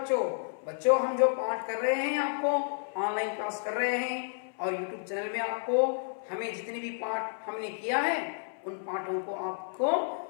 बच्चों हम जो पाठ कर रहे हैं, आपको ऑनलाइन क्लास कर रहे हैं और यूट्यूब चैनल में आपको हमें जितने भी पाठ हमने किया है उन पाठों को आपको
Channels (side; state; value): right; silent; 57 dB below the other